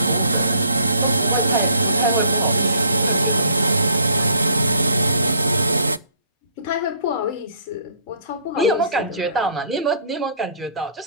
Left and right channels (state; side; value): inverted; both; correlation -0.58